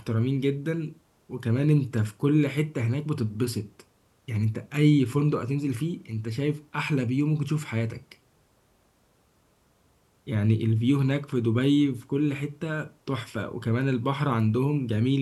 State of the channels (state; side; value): identical; both; correlation 1.00